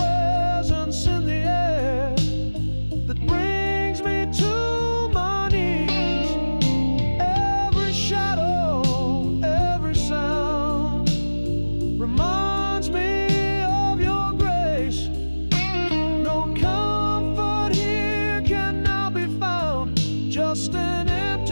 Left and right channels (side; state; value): both; inverted; correlation -1.00